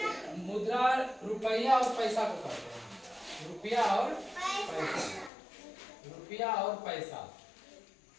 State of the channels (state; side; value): drops out; right; at 5.3 s